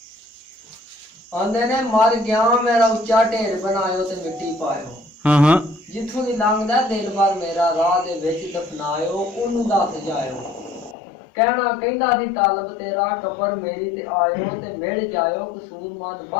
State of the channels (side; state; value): right; drops out; at 11.0 s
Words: ਆਂਦੇ ਨੇ ਮਰ ਗਿਆ ਮੇਰਾ ਉੱਚਾ ਢੇਰ ਬਣਾਇਓ ਤੇ ਮਿੱਟੀ ਪਾਇਓ। ਹਾਂ ਜਿੱਥੋਂ ਦੀ ਲੰਘਦਾ ਦਿਲ ਭਰ ਮੇਰਾ ਰਾਹ ਦੇ ਵਿੱਚ ਦਫਨਾਇਓ ਉਹਨੂੰ ਦੱਸ ਜਾਇਓ। ਕਹਿਣਾ ਕਹਿੰਦਾ ਸੀ ਤਾਲਬ ਤੇਰਾ ਕਬਰ ਮੇਰੀ ਤੇ ਆਇਓ ਤੇ ਮਿਲ ਜਾਇਓ ਕਸੂਰਮੰਦ